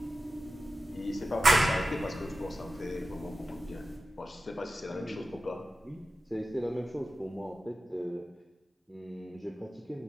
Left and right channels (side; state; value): both; normal; correlation 0.94